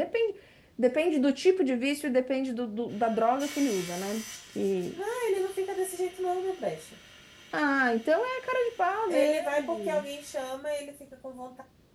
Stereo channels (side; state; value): both; identical; correlation 1.00